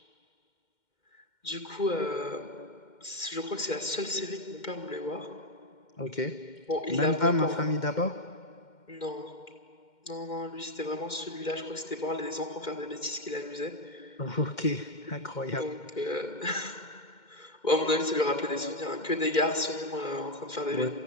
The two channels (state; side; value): late; right; 2.1 ms